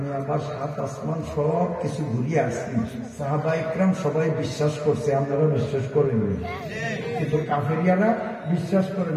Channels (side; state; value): both; identical; correlation 1.00